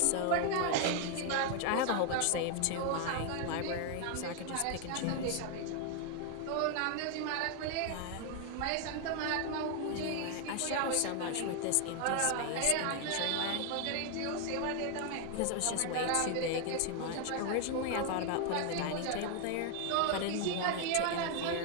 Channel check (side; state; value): both; different; correlation 0.00